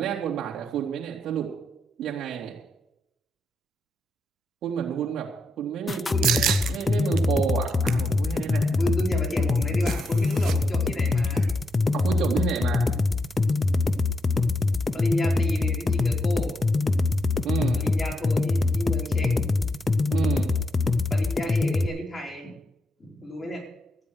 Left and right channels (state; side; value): normal; both; correlation 0.81